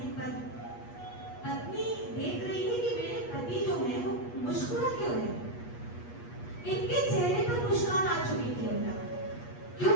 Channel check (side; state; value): right; late; 8.3 ms